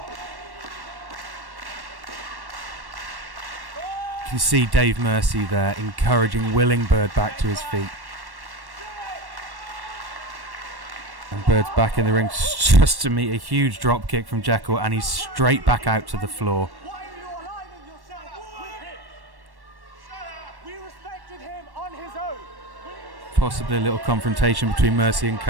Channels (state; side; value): late; left; 1.1 ms